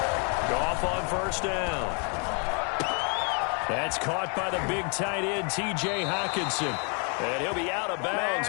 Goff on first down. That's caught by the big tight end, T.J. Hockenson. And he'll be out of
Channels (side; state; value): right; quieter; 38.3 dB